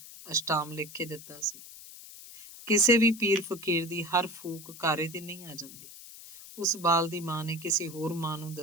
ਅਸ਼ਟਾਮ ਲਿਖ ਕੇ ਦਿੱਤਾ ਸੀ। ਕਿਸੇ ਵੀ ਪੀਰ ਫਕੀਰ ਦੀ ਹਰ ਫੂਕ ਕਾਰੇ ਤੇ ਨਹੀਂ ਆ ਜਾਂਦੀ। ਉਸ ਬਾਲ ਦੀ ਮਾਂ ਨੇ ਕਿਸੇ ਹੋਰ ਮਾਂ ਨੂੰ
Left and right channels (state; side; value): noise; left; hiss, 16 dB below the sound